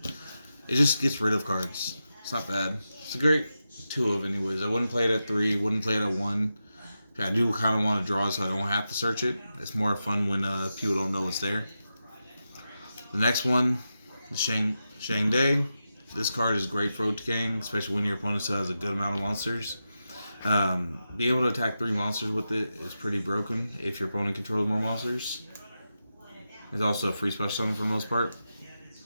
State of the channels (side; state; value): both; inverted; correlation -0.90